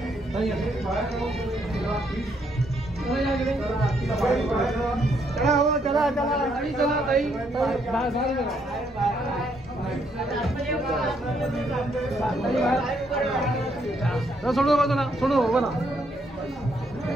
चला ताई सोडो बाजूला सोडो बघा.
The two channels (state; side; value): normal; both; correlation 0.73